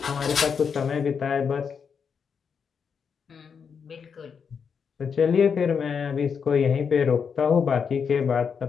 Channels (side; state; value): right; quieter; 6.4 dB